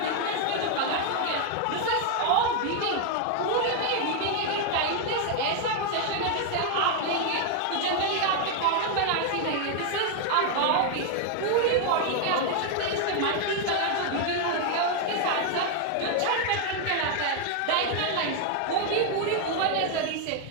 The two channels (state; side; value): different; both; correlation 0.01